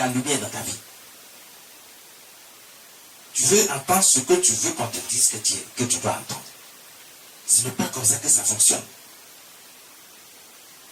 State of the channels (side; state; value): both; identical; correlation 1.00